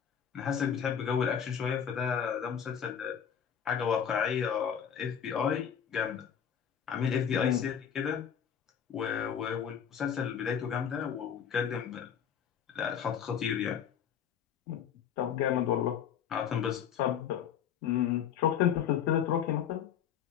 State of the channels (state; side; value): quieter; right; 8.3 dB